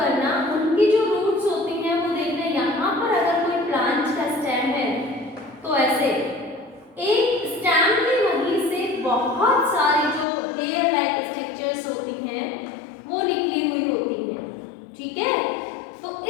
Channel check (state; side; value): drops out; right; at 10.2 s